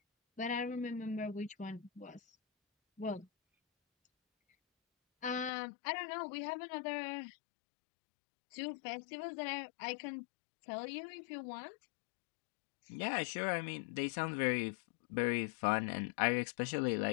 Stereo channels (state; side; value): drops out; right; at 5.5 s